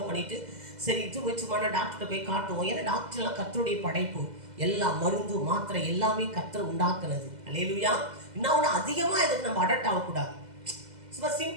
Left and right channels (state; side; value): late; left; 2.0 ms